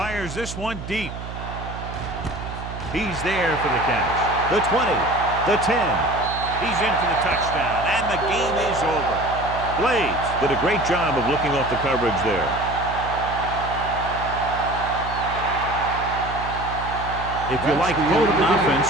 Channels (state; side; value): noise; right; hum, 9 dB below the sound